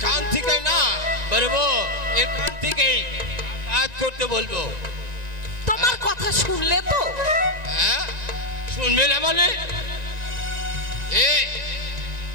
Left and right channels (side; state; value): left; late; 1.9 ms